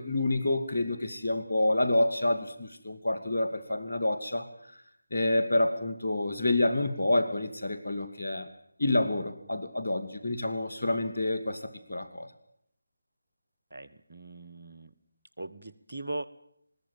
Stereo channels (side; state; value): both; inverted; correlation -0.92